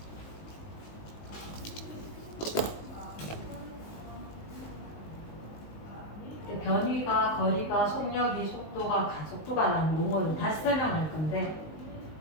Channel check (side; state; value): right; late; 19 ms